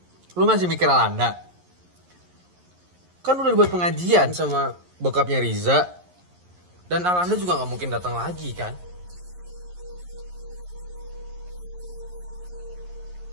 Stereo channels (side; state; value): left; late; 11 ms